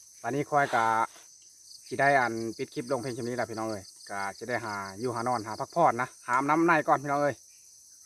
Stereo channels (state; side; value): identical; both; correlation 1.00